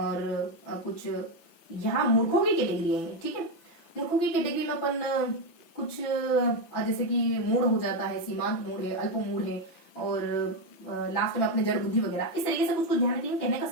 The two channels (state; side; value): late; right; 6.0 ms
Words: कुछ यहाँ मूर्खों की कैटेगरी है, ठीक है। मूर्खों की कैटेगरी में अपन कुछ जैसे कि मूढ़ हो जाता है, सीमांत मूढ़ है, अल्प मूढ़ है, और लास्ट में अपने जड़ बुद्धि वगैरह, इस तरीके से कुछ ध्यान रखेंगे। कहने का